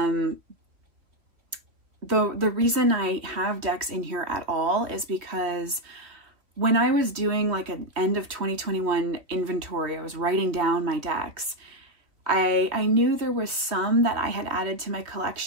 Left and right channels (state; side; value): late; left; 2.9 ms